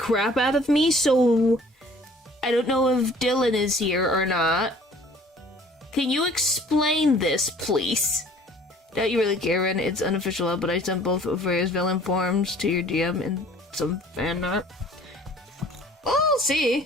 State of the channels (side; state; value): both; normal; correlation 0.53